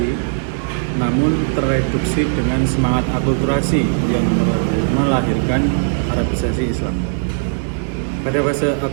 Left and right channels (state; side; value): silent; left; 64 dB below the other